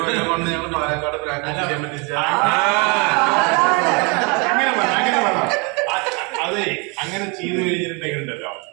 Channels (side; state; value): left; quieter; 31.2 dB